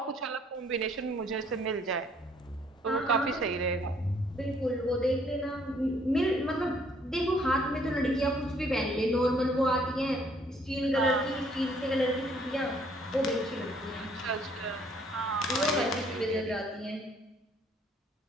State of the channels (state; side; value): normal; both; correlation 0.63